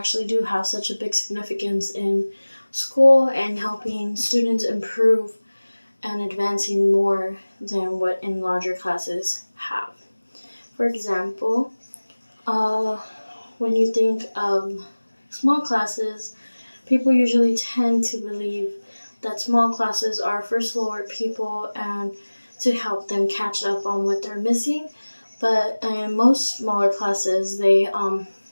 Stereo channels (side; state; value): both; inverted; correlation -1.00